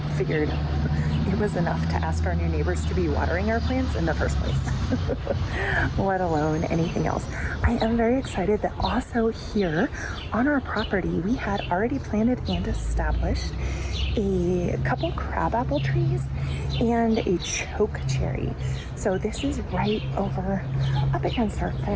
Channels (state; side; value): identical; both; correlation 1.00